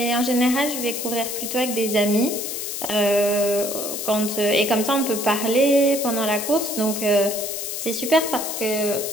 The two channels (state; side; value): noise; left; hiss, 5 dB below the sound